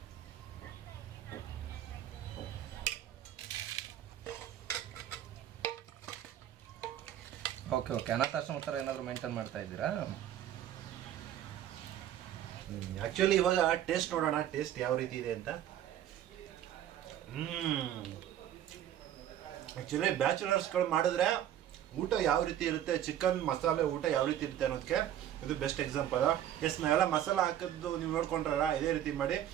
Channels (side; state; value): left; quieter; 11.3 dB